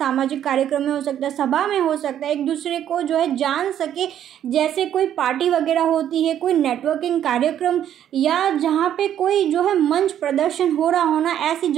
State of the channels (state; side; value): quieter; left; 10.4 dB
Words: कार्यक्रम में हो सकता है, सभा में हो सकता है, एक दूसरे को जो है जान सके, जैसे कोई पार्टी वगैरह होती है, कोई नेटवर्किंग कार्यक्रम, या जहाँ पे कोई जो है मंच प्रदर्शन हो रहा होना, ऐसी